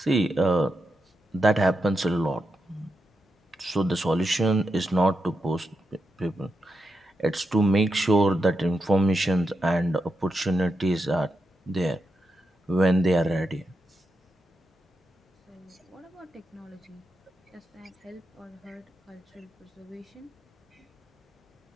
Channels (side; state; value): both; normal; correlation 0.86